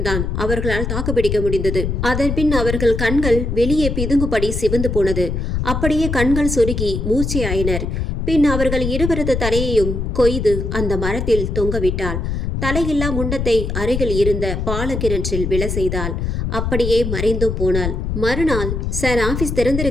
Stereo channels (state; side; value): noise; left; rumble, 2 dB below the sound